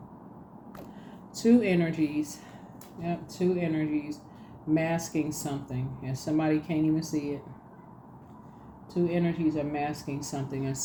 Two energies masking something, and somebody can't even see it. Two energies are masking something, and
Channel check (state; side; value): identical; both; correlation 1.00